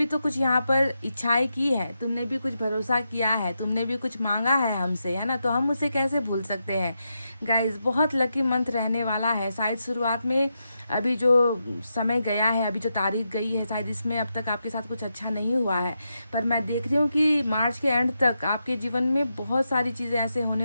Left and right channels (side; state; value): both; inverted; correlation -0.86